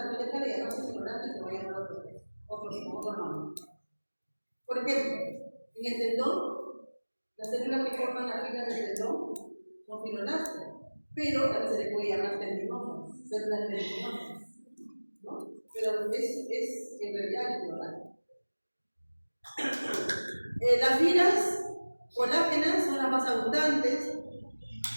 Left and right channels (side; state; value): both; inverted; correlation -1.00